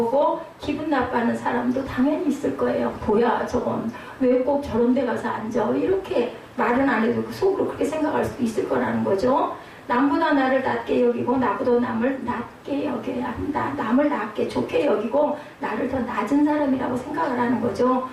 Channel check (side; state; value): both; identical; correlation 1.00